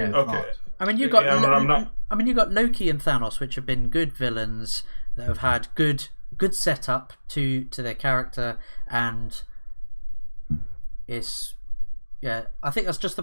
thought. I mean, you got Loki and Thanos, which have been good villains that have had good setup to their character, and it's I think that's just the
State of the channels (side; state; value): both; inverted; correlation -1.00